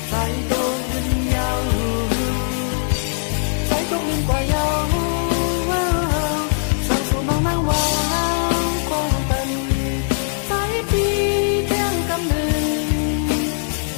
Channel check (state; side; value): silent; right; digital silence